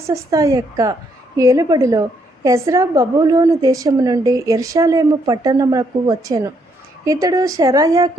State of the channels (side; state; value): both; normal; correlation 0.73